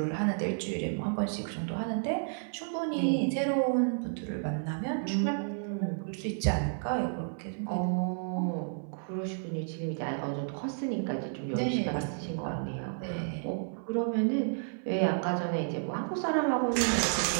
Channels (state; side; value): silent; left; 57 dB below the other